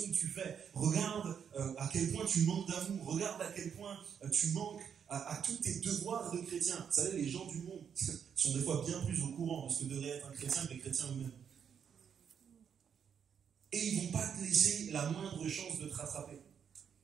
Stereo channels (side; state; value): left; quieter; 7.6 dB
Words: que tu fais, regarde à quel point tu manques d'amour, regarde à quel point tu manques à tous tes devoirs de chrétien. Vous savez, les gens du monde sont des fois bien plus au courant de ce que devrait être un chrétien que les chrétiens eux-mêmes. Et ils ne vont pas te laisser la moindre chance de te rattraper.